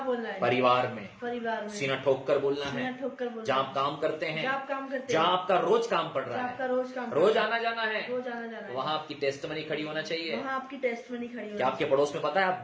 बोलना है? परिवार में। परिवार में। सीना ठोक कर बोलना है। सीना ठोक कर बोलना। जहां आप काम करते हैं, जहां आप काम करते जहां हैं, आपका रोज काम पड़ रहा जहां है, आपका रोज काम, रोज आना जाना है, रोज आना जाना है, वहां आपकी टेस्टमनी खड़ी होना चाहिए। वहां आपकी टेस्टमनी खड़ी क्या आपके पड़ोस में पता है आप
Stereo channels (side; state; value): both; identical; correlation 1.00